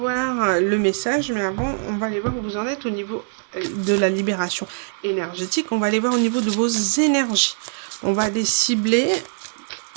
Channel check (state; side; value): silent; left; digital silence